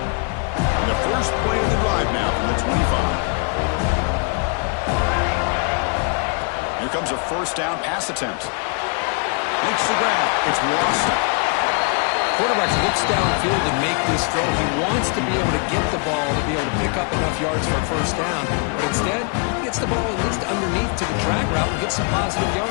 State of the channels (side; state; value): right; quieter; 37.7 dB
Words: First play of the drive now from the 25. Here comes a first down pass attempt. Makes the grab. It's Watson. Quarterback looks downfield to make this throw. He wants to be able to get the ball to be able to pick up enough yards for a first down. But instead, he gets the ball at least underneath to the drag route and gets some positive